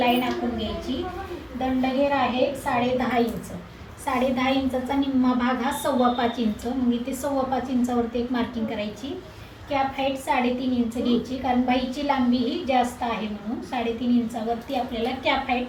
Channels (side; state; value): both; identical; correlation 1.00